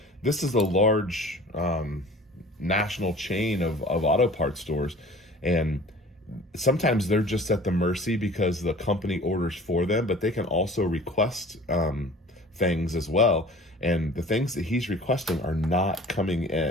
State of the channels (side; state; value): both; normal; correlation 0.45